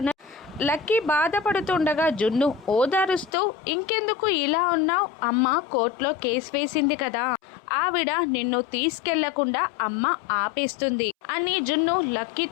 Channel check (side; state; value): right; drops out; at 3.3 s